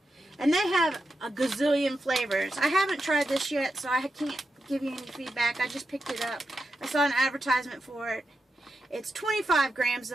And they have a gazillion flavors. I haven't tried this yet, so I can't give you any feedback. I just picked it up. I saw an advertisement for it. It's 25 grams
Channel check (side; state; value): both; normal; correlation 0.88